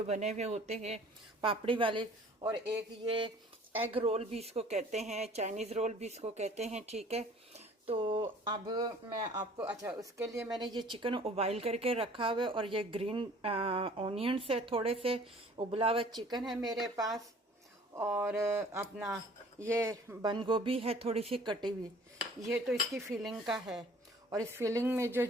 बने हुए होते हैं पापड़ी वाले, और एक ये एग रोल भी इसको कहते हैं, चाइनीज़ रोल भी इसको कहते हैं, ठीक है। तो अब मैं आपको, अच्छा, उसके लिए मैंने ये चिकन उबाइल करके रखा हुआ है और ये ग्रीन ऑनियंस है, थोड़े से उबला हुआ चिकन है मेरे पास, और अपना ये बंद गोभी है थोड़ी सी कटी हुई। ये तो इसकी फिलिंग का है, और इस फिलिंग में जो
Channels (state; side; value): normal; both; correlation 0.51